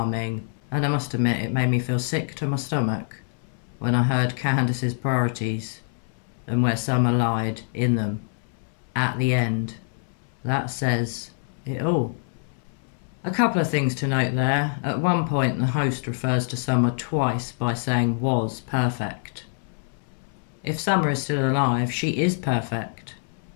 And I must admit, it made me feel sick to my stomach when I heard Candus's priorities and where Summer lied in them at the end. That says it all. A couple of things to note there. At one point, the host refers to Summer twice by saying was perfect. If Summer is still alive, she is perfect,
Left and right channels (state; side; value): silent; right; 62 dB below the other